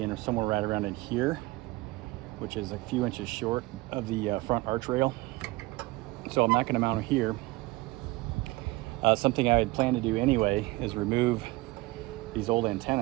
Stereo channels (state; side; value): quieter; left; 21.0 dB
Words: somewhere right around in here, which is a few inches short of the front arch rail. So I'm not going to mount it here. Something I had planned to do anyway is remove these old